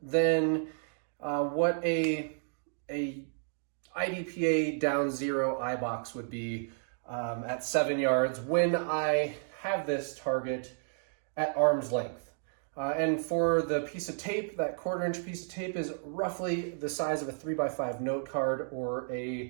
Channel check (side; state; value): left; silent; digital silence